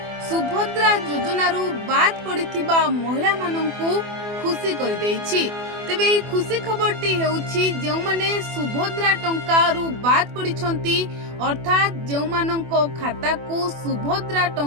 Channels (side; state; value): left; late; 24 ms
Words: सुभद्रा योजनार बाद पड़िथिबा महिला मानंकु खुशी करि दैछि। तेबे एही खुशी खबरटी हेउछि जेउ माने सुभद्रा टंकारु बाद पड़िछंती, अर्थात जेउ मानंको खाता को सुभद्रा